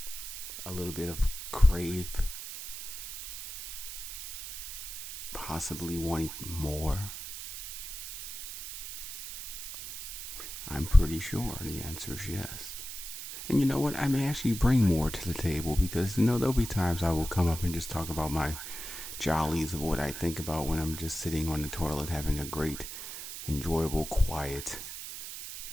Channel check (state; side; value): noise; right; hiss, 8 dB below the sound